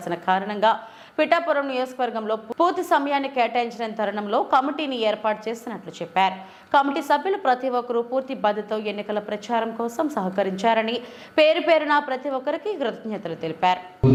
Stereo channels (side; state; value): both; identical; correlation 1.00